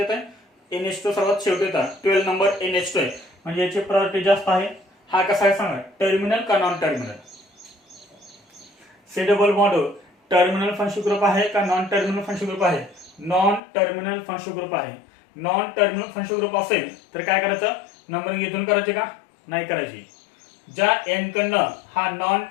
आहे. NH2 सर्वात शेवटी होता, 12 नंबर NH2 आहे, म्हणजे याची प्रायोरिटी जास्त आहे. हा कसा आहे सांगा, टर्मिनल का non terminal. C double bond O terminal functional group आहे का नॉन टर्मिनल फंक्शनल ग्रुप आहे. नॉन टर्मिनल फंक्शनल ग्रुप आहे. नॉन टर्मिनल फंक्शनल ग्रुप असेल तर काय करायचं, नंबरिंग इथून करायची का नाही करायची. ज्या एन कडनं हा non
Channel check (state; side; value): drops out; right; at 13.6 s